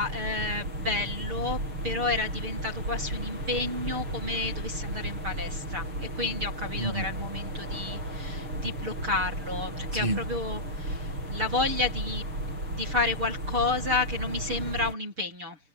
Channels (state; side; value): late; left; 6.8 ms